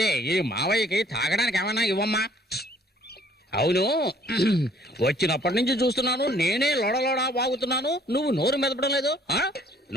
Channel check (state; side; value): normal; both; correlation 0.59